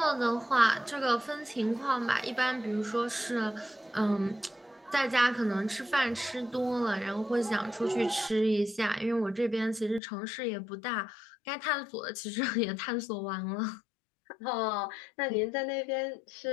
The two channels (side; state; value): right; drops out; at 10.0 s